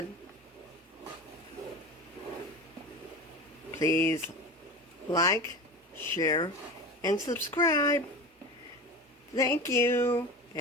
Please like, share, and subscribe. Thank you.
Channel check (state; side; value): normal; both; correlation 0.30